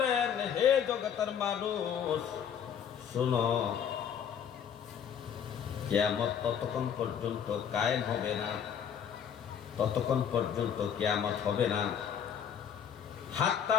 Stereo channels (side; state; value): right; quieter; 8.2 dB